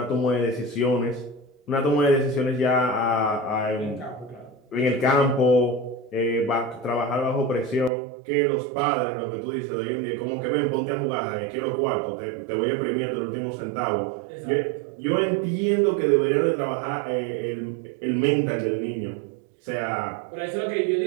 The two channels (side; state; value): left; drops out; at 7.9 s